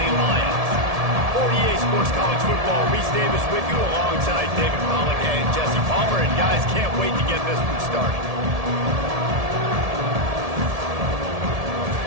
Lions. For EA Sports College Football, Reese Davis with you alongside David Pollack and Jesse Palmer. And guys, can't wait to get this one started.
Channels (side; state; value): left; late; 1.7 ms